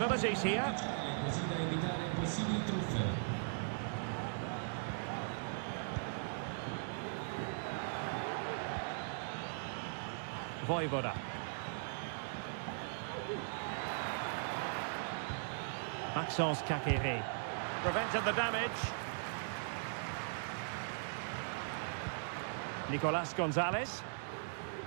here. Vojvoda. Maxence Kakere. Prevented the damage. Nicolas Gonzalez.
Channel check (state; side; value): silent; left; digital silence